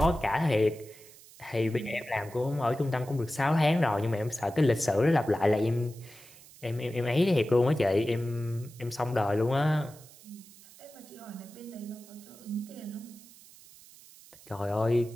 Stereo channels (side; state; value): right; noise; hiss, 22 dB below the sound